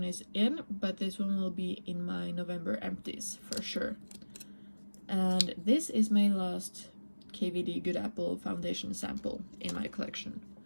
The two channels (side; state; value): both; inverted; correlation -1.00